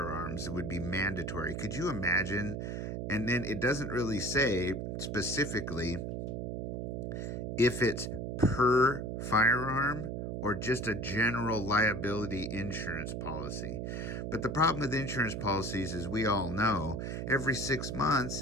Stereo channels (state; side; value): noise; right; hum, 4 dB below the sound